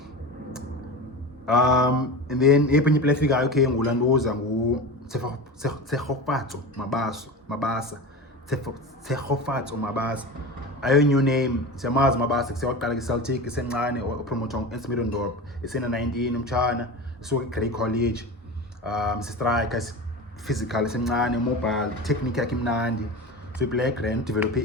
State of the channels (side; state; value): both; normal; correlation 0.28